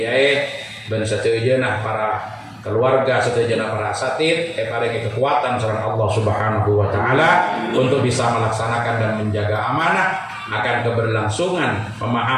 dan satejeuna para keluarga setujuan para asatid paringi kekuatan sareng Allah Subhanahu wa taala untuk bisa melaksanakan dan menjaga amanah akan keberlangsungan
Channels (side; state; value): both; identical; correlation 1.00